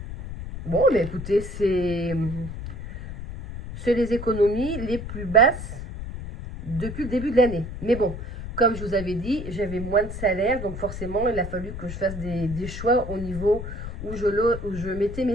Bon, mais écoutez, c'est les économies les plus basses depuis le début de l'année. Mais bon, comme je vous avais dit, j'avais moins de salaire, donc forcément, il a fallu que je fasse des choix au niveau où je mettais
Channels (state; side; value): noise; left; rumble, 9 dB below the sound